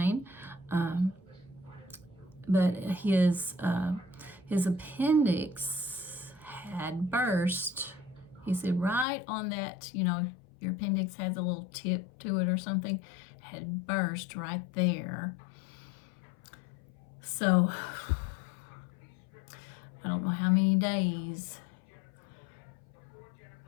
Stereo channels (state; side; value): drops out; right; at 9.1 s